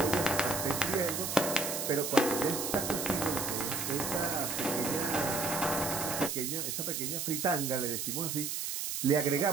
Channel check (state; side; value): noise; right; hiss, 2 dB below the sound